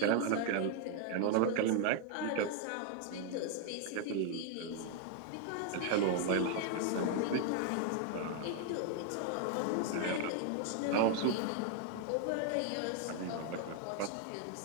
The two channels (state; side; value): different; both; correlation 0.00